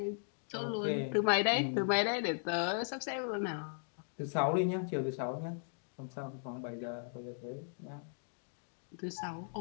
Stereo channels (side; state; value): right; silent; digital silence